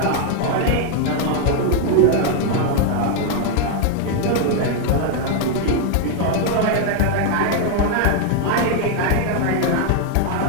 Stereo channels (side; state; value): both; different; correlation 0.00